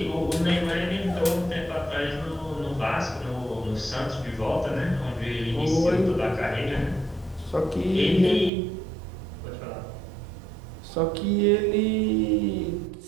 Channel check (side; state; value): left; drops out; at 8.5 s